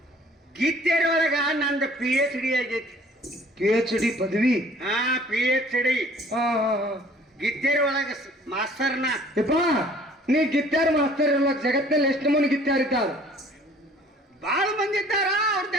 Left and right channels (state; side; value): normal; both; correlation 0.54